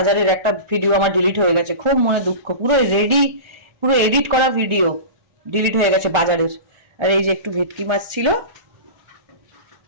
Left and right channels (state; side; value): late; left; 1.4 ms